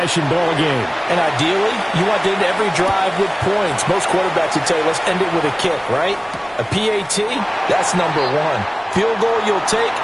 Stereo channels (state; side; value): identical; both; correlation 1.00